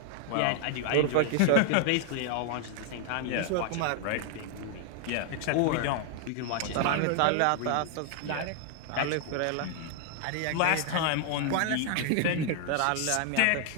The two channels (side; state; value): both; different; correlation 0.00